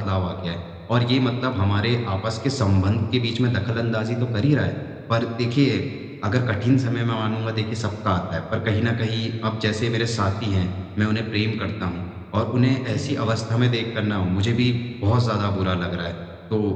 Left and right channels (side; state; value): both; identical; correlation 1.00